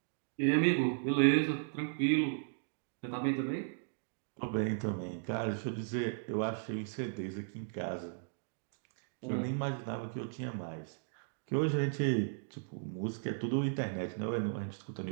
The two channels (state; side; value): silent; left; digital silence